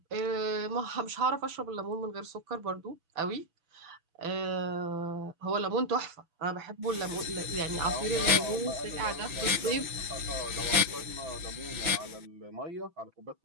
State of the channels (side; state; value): left; late; 6.1 ms